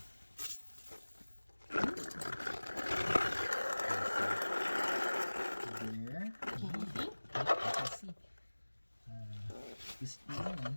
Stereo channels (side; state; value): both; inverted; correlation -1.00